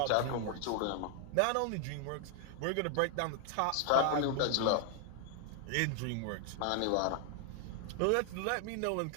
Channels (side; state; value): both; different; correlation 0.00